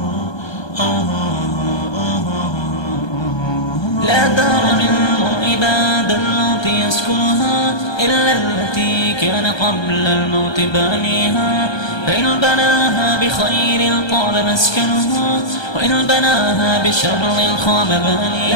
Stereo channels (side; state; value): right; late; 1.2 ms